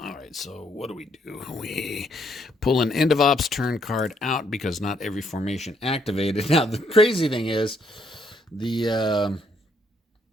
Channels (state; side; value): normal; both; correlation 0.71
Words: right, so what do? We pull an end of ops turn card out because not every formation activated. Now, the crazy thing is the